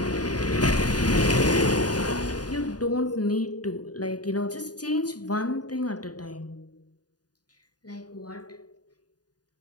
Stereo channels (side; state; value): right; late; 0.69 ms